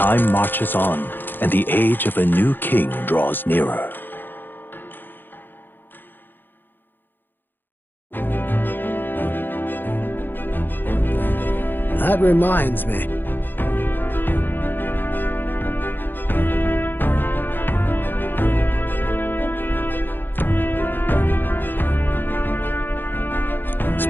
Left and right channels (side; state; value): right; late; 0.095 ms